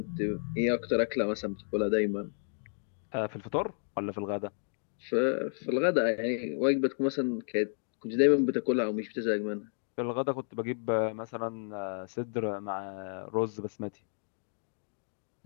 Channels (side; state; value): right; silent; digital silence